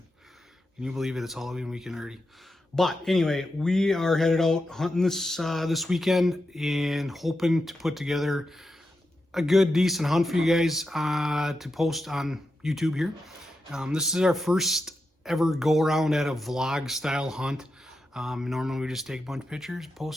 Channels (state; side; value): normal; both; correlation 0.88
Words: Can you believe it? It's Halloween weekend already. But anyway, we are headed out hunting this weekend and hoping to put together a good, decent hunt for you guys to post on YouTube here. This is our first ever go around at a vlog style hunt. Normally we just take a bunch of pictures,